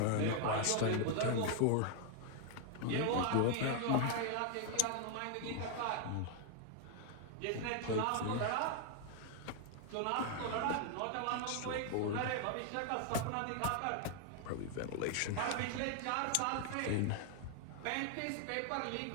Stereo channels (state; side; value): different; both; correlation 0.00